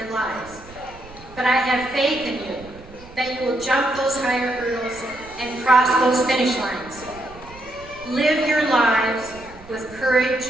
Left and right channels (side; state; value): right; noise; rumble, 20 dB below the sound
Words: lives. But I have faith in you that you will jump those higher hurdles and cross those finish lines. Live your lives with courage,